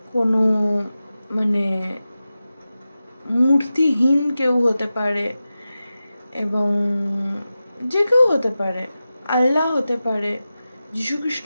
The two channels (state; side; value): inverted; both; correlation -0.94